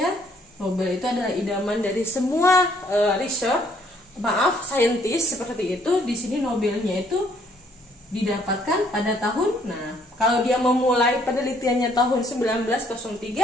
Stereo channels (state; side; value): normal; both; correlation 0.65